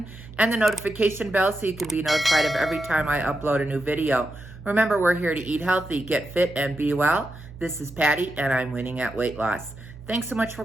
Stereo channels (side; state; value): right; noise; hum, 17 dB below the sound